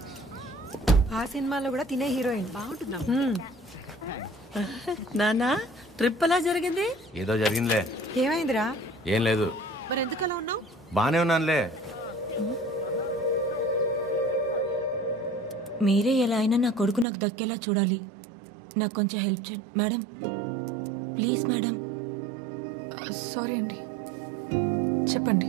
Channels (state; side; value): drops out; left; at 17.1 s